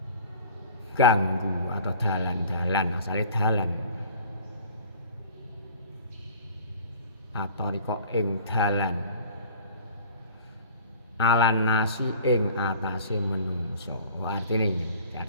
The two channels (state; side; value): inverted; both; correlation -0.46